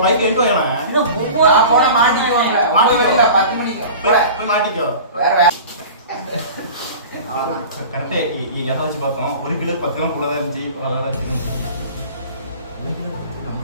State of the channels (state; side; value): inverted; both; correlation -0.38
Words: பைக் எங்க போயனா? இன்னும் நான் போன மாட்டிக்குவாங்க. மாட்டிக்கல 10 மணிக்கு. போய் மாட்டிக்கோ. வேற கரெக்டா எதாச்சும் பார்த்தோம். 1 கிலோ 10 கிலோ கூட தான் இருந்துச்சு. அதனால